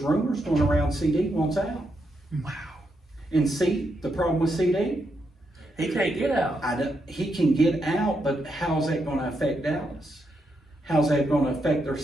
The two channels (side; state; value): both; normal; correlation 0.81